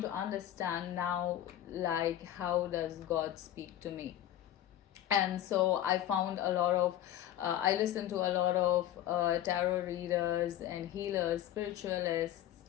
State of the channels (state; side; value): quieter; right; 12.3 dB